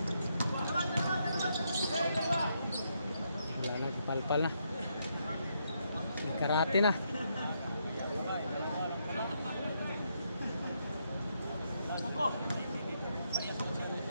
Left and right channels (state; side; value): inverted; both; correlation -0.78